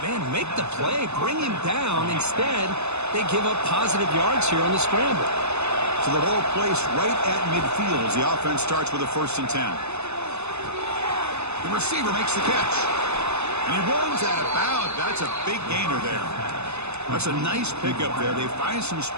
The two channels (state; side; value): late; left; 0.80 ms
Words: man, make the play. Bring him down. Instead, they give up positive yards here on the scramble. So the ball placed right at midfield as the offense starts with a 1st and 10. The receiver makes the catch. And he runs out of bounds. That's a big gainer there. That's a nice pickup there. They find some